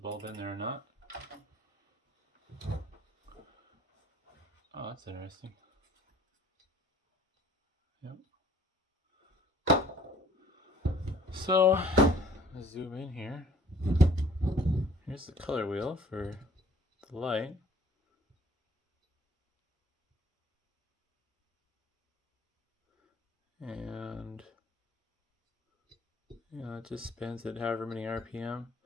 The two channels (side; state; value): both; normal; correlation 0.53